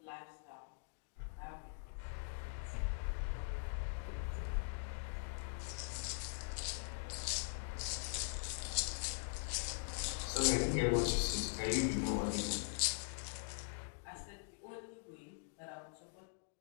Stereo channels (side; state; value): right; silent; digital silence